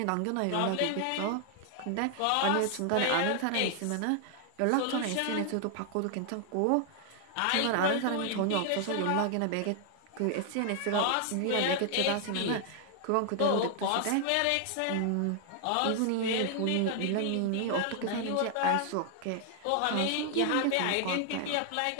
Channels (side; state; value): both; different; correlation 0.00